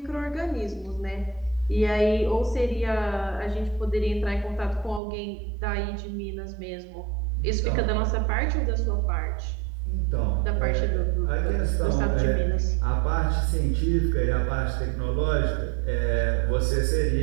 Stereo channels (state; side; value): drops out; left; at 5.0 s